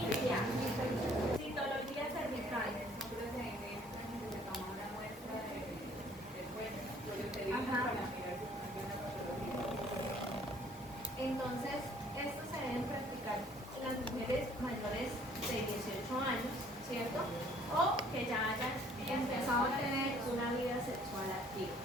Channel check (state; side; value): normal; both; correlation 0.58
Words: Citología cervical. Ajá. Entonces, esto se deben practicar en las mujeres mayores de 18 años, ¿cierto? O que ya hayan empezado a tener una vida sexual activa.